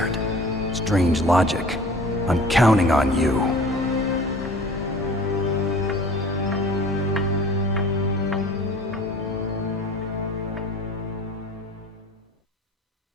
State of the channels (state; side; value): normal; both; correlation 0.45